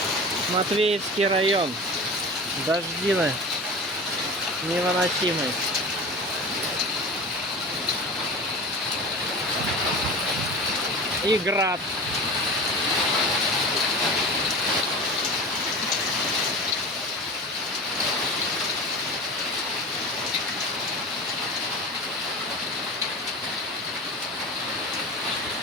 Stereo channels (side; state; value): both; normal; correlation 0.33